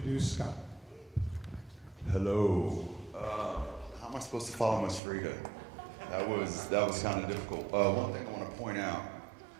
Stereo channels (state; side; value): drops out; left; at 5.0 s